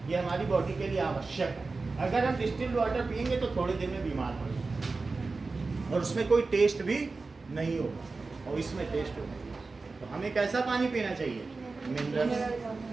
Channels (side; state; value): left; quieter; 3.9 dB